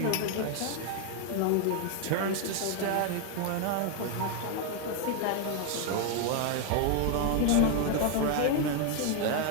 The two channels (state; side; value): different; both; correlation 0.01